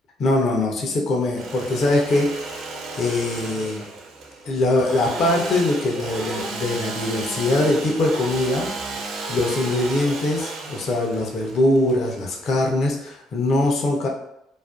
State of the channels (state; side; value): normal; both; correlation 0.70